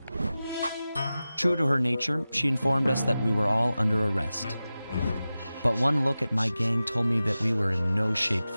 True to her nature, she informed us that we were all under arrest. But one look at my gang told me that we were in no shape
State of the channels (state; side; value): inverted; both; correlation -0.95